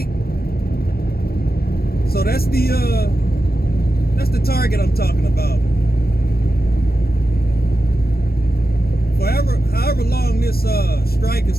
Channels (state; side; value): late; right; 0.44 ms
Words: So that's the target I'm talking about. However long this strike is